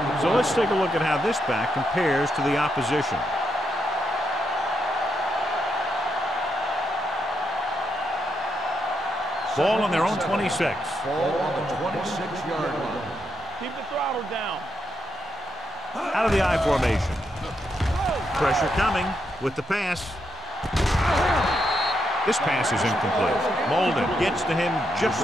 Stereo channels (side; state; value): both; normal; correlation 0.81